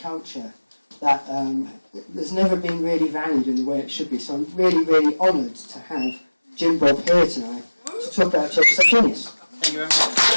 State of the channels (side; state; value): both; inverted; correlation -1.00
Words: culture that has never been really valued in the way it should be. So I'm really, really honoured to have Jim Bob here tonight to talk about Church of the Subgenius. Thank you very much.